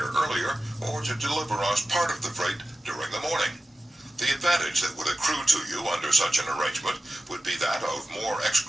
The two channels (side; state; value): both; normal; correlation 0.93